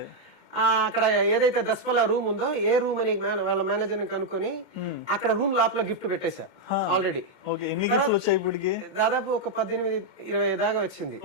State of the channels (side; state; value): left; late; 2.1 ms